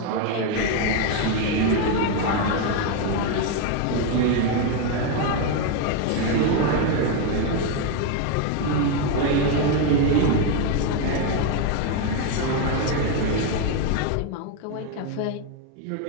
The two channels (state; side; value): different; both; correlation 0.02